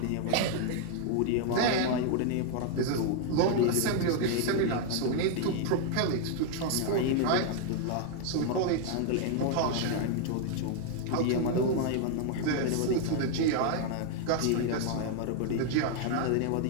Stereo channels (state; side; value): different; both; correlation 0.00